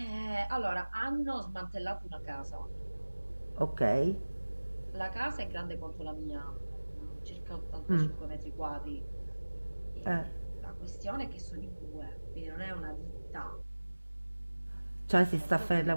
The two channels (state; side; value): inverted; both; correlation -1.00